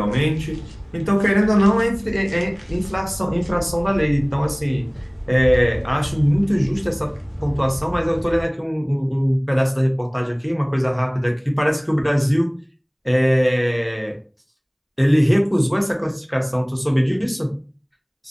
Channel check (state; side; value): identical; both; correlation 1.00